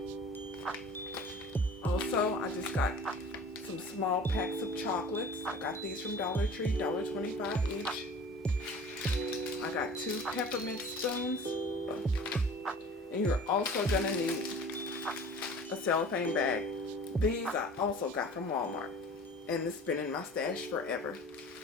Also, I just got some small packs of chocolates. I got these from Dollar Tree, $1.25 each. I got 2 peppermint spoons. And you're also gonna need a cellophane bag. These I also got from Walmart. And it's been in my stash forever.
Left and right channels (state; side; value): normal; both; correlation 0.43